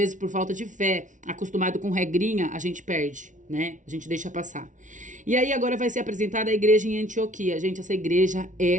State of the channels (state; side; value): late; left; 0.37 ms